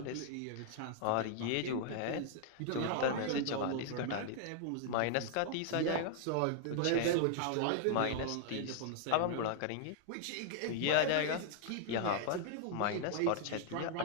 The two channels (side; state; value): both; different; correlation -0.01